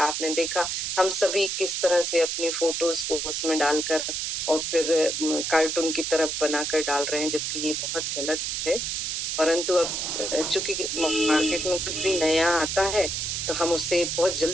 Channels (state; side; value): noise; right; hiss, 2 dB below the sound